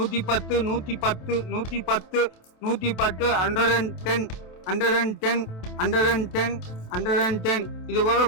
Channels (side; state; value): right; late; 27 ms